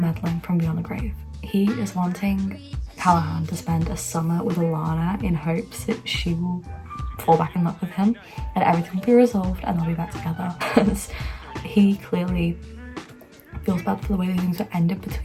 from beyond the grave. He is wanting Callahan to spend a summer with Alana in hopes that she will fall back in love with him and everything will be resolved and they'll be back together. Because he clearly feels bad for the way things were ended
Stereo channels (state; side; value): identical; both; correlation 1.00